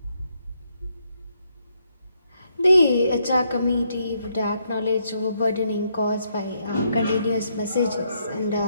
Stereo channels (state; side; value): inverted; both; correlation -0.77